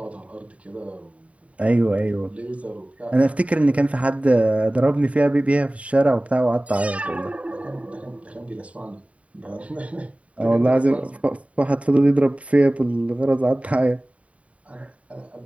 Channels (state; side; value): late; left; 0.066 ms